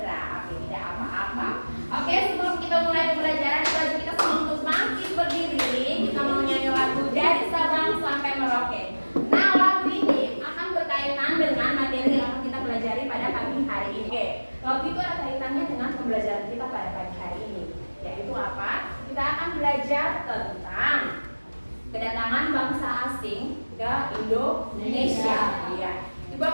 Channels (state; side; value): inverted; both; correlation -1.00